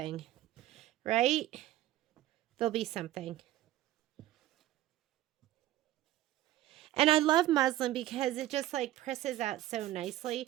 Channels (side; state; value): left; quieter; 14.5 dB